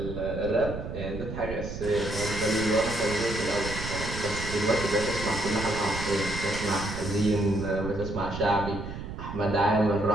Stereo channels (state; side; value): noise; right; rumble, 8 dB below the sound